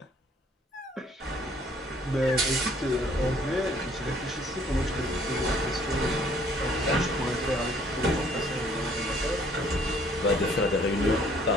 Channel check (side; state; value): both; normal; correlation 0.60